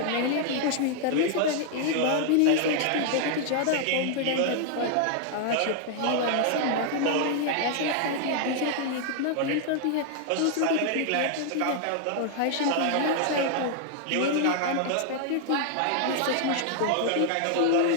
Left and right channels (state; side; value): different; both; correlation 0.00